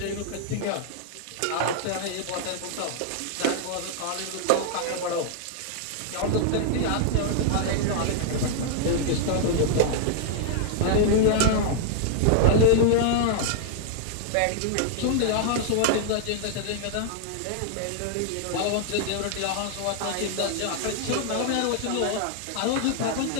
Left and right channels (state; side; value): different; both; correlation -0.01